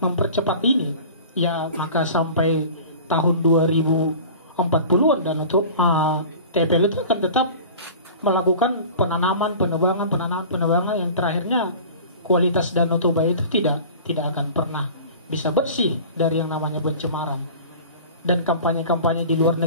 mempercepat ini, ya maka sampai tahun 2040-an Danau Toba TPL itu akan tetap melakukan penebangan yang terakhirnya kualitas Danau Toba itu tidak akan pernah bisa bersih dari yang namanya pencemaran. Dan kampanye-kampanye di luar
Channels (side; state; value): both; inverted; correlation -0.40